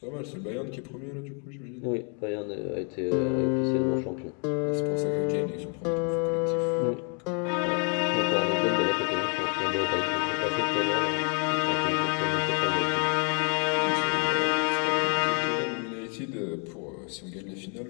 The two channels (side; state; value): right; quieter; 39.0 dB